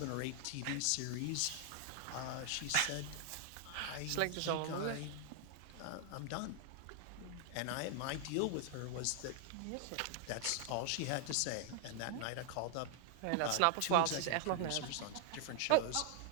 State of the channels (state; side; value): different; both; correlation 0.00